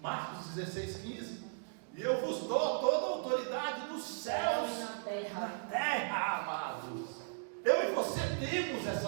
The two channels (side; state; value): left; silent; digital silence